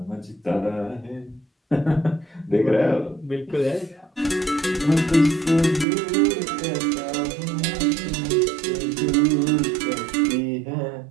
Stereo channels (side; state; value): left; drops out; at 5.9 s